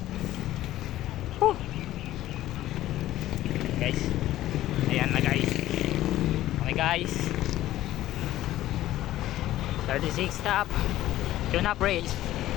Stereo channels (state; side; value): quieter; right; 14.5 dB